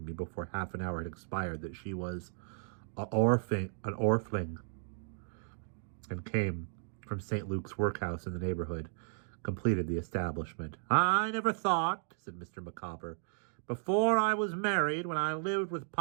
me before half an hour had expired that she was an orphan, and came from St. Luke's workhouse in the neighborhood, completed the establishment. I never thought, said Mr. Micawber, before I was married, when I lived with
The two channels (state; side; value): silent; left; digital silence